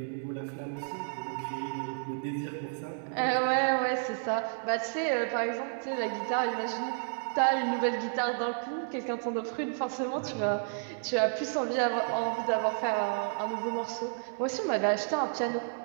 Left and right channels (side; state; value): left; silent; digital silence